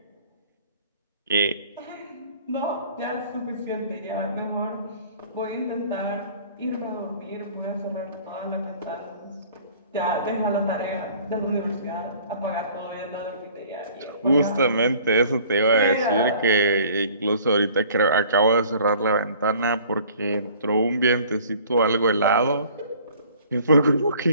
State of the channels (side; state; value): both; inverted; correlation -0.52